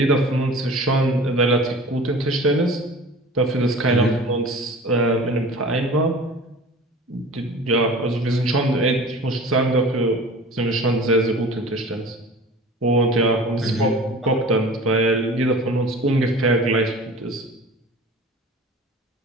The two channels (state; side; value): normal; both; correlation 0.40